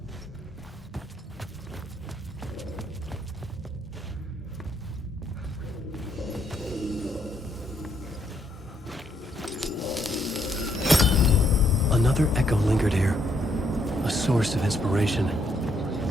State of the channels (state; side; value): normal; both; correlation 0.73